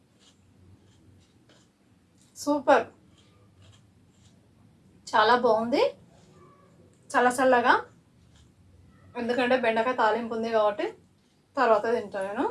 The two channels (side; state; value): both; identical; correlation 1.00